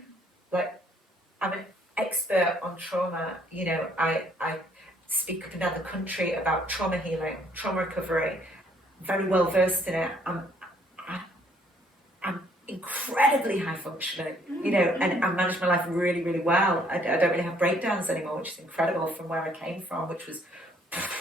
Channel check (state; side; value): normal; both; correlation 0.64